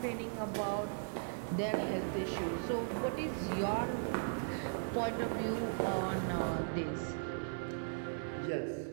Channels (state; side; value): silent; left; 53 dB below the other